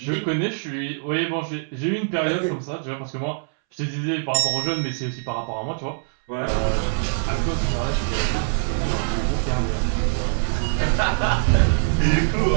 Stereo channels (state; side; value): silent; left; 63 dB below the other